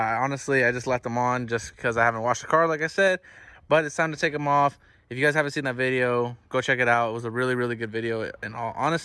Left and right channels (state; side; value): identical; both; correlation 1.00